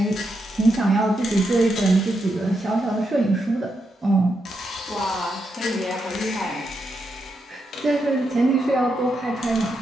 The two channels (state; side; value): normal; both; correlation 0.83